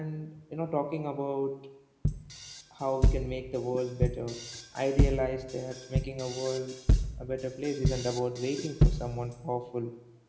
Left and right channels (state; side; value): identical; both; correlation 1.00